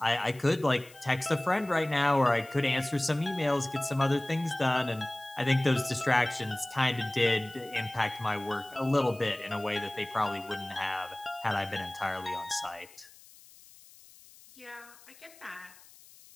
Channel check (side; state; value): left; noise; hiss, 23 dB below the sound